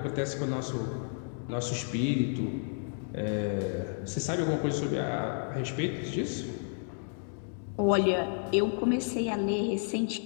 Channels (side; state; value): right; silent; 57 dB below the other